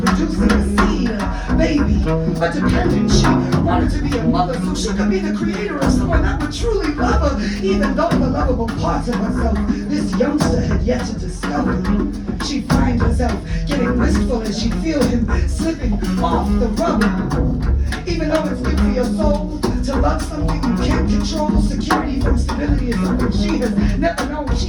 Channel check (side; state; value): both; identical; correlation 1.00